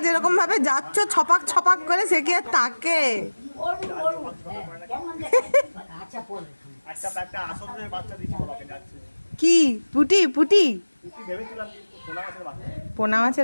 যেরকম ভাবে যাচ্ছ ছপাক ছপাক করে, সে কি আর তাকে কি পুটি পুটি পোনা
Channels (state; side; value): inverted; both; correlation -1.00